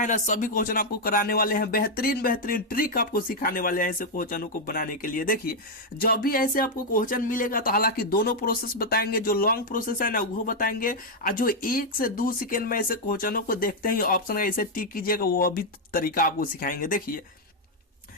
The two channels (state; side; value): normal; both; correlation 0.00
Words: ना, सभी क्वेश्चन आपको कराने वाले हैं, बेहतरीन बेहतरीन ट्रिक आपको सिखाने वाले हैं ऐसे क्वेश्चनों को बनाने के लिए। देखिए जब भी ऐसे आपको क्वेश्चन मिलेगा तो हालांकि दोनों प्रोसेस बताएंगे, जो लॉन्ग प्रोसेस है ना वो बताएंगे, और जो 1 से 2 सेकेंड में ऐसे क्वेश्चनों को देखते ही ऑप्शन ऐसे टिक कीजिएगा, वो भी तरीका आपको सिखाएंगे। देखिए